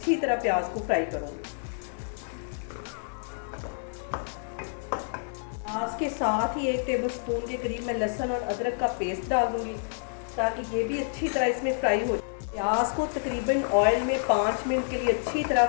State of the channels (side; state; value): right; silent; 59 dB below the other